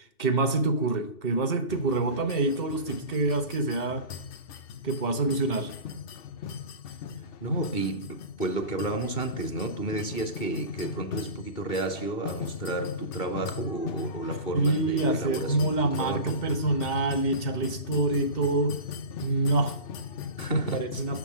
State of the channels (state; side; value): late; right; 2.7 ms